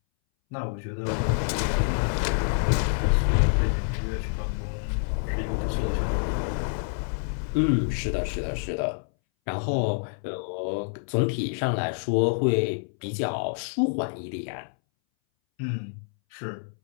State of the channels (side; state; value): right; silent; 60 dB below the other